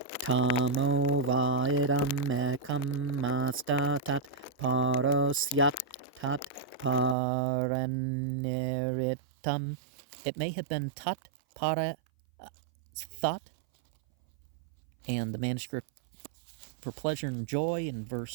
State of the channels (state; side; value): drops out; left; at 7.2 s